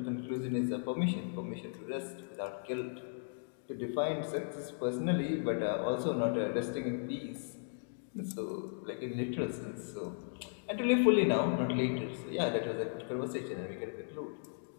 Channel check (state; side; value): silent; right; digital silence